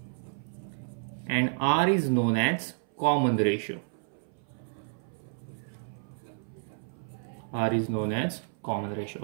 and r is known as common ratio. R is known as common ratio.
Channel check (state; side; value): silent; left; 57 dB below the other